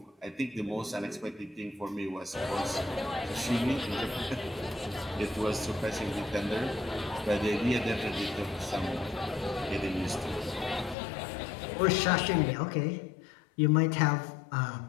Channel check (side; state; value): right; drops out; at 11.0 s